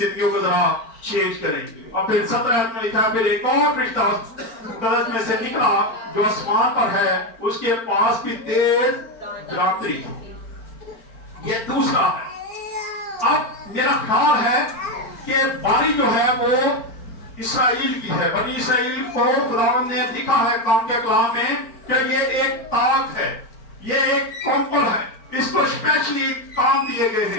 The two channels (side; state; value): right; late; 4.4 ms